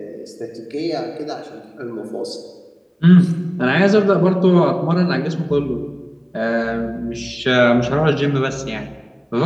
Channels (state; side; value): identical; both; correlation 1.00